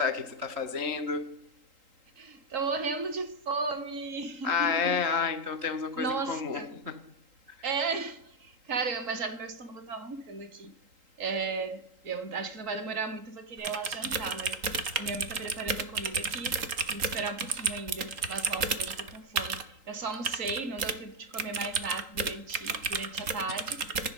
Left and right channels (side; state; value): left; late; 3.8 ms